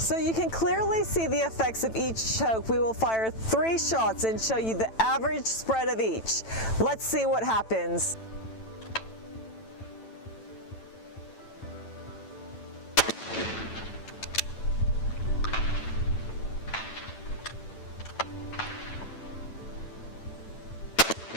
you can clearly see the effects of each choke. We will fire 3 shots and show you the average spread of each. Let's see what happens.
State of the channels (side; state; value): right; late; 9.0 ms